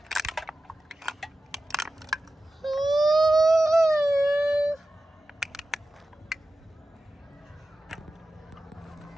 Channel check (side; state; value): both; normal; correlation 0.94